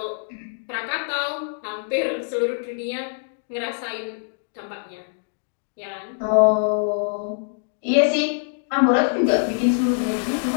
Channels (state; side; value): silent; right; 63 dB below the other